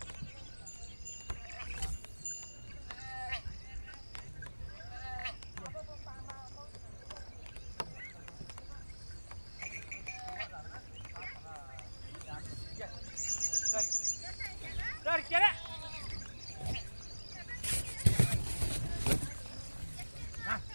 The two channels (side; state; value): both; inverted; correlation -1.00